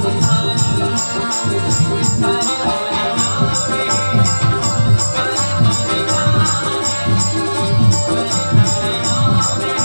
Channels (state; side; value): inverted; both; correlation -1.00